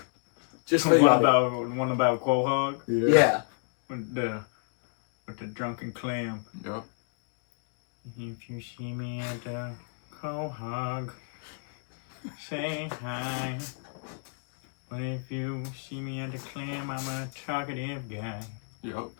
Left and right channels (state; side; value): silent; right; digital silence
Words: Just One about Quahog Yeah. with the drunken clam. Yeah. If you see me at the Quahog, say hi. But if you see me at the clam, I'm a talkative guy. Yep.